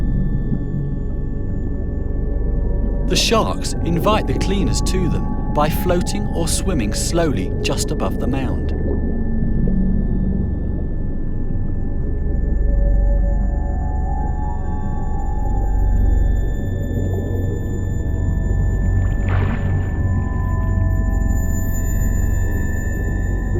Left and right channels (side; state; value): both; identical; correlation 1.00